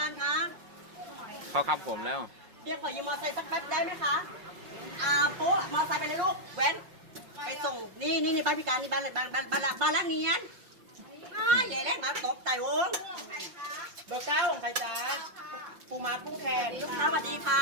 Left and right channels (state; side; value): late; left; 5.6 ms